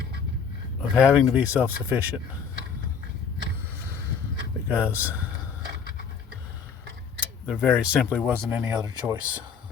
of having to be self-sufficient, because there very simply wasn't any other choice.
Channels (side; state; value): right; quieter; 6.4 dB